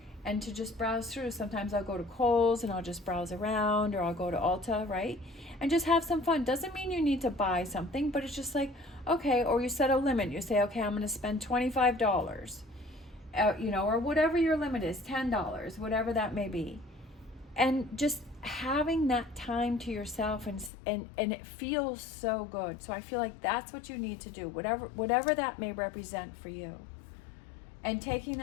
and to just browse through. Sometimes I'll go to Kohl's and I'll just browse around, or I'll go to Ulta, right? And just have some fun. Doesn't mean you need to buy something, but it's just like, okay, or you set a limit. You say, okay, I'm going to spend $25, or whatever your limit is, $10, whatever that may be. And just having that time to yourself, and it feels so good. So I feel like that's what you need to do, whatever that may represent for you. And taking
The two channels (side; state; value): right; drops out; at 20.7 s